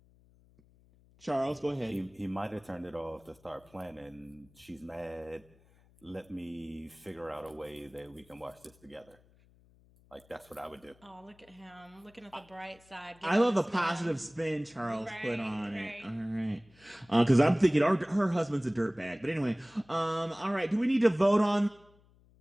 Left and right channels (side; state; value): left; noise; hum, 29 dB below the sound